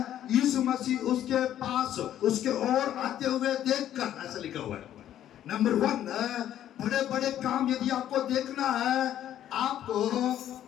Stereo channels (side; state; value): right; quieter; 11.5 dB